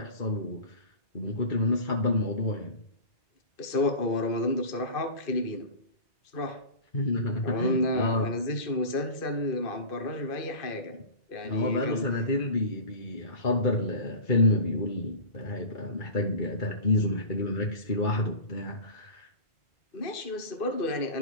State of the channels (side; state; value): right; late; 2.5 ms